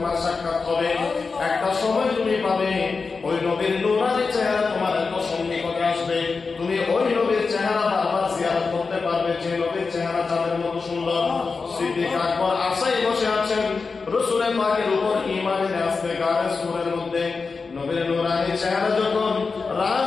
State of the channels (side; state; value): right; quieter; 4.6 dB